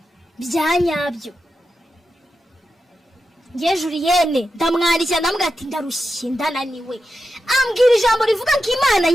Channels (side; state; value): both; normal; correlation 0.89